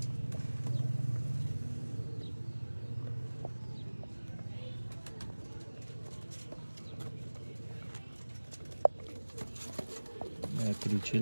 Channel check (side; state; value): both; inverted; correlation -1.00